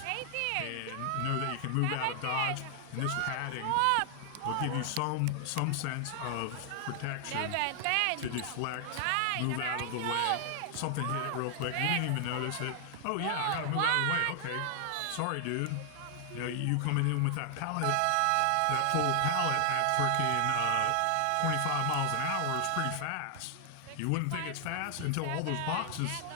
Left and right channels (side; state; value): both; different; correlation -0.01